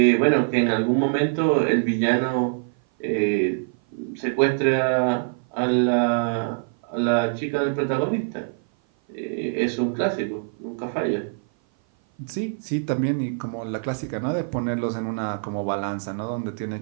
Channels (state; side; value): silent; left; 56 dB below the other